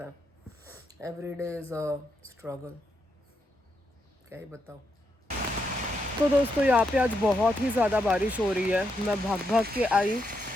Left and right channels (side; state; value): both; normal; correlation 0.81